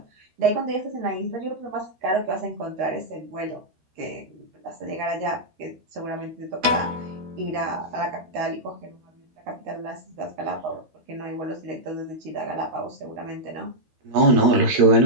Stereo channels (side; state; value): left; late; 12 ms